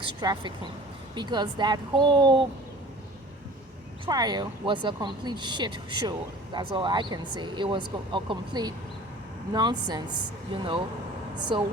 trafficking because that whole trial was a complete shit show. That's all I can say. It was a complete nonsense. So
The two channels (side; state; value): both; normal; correlation 0.44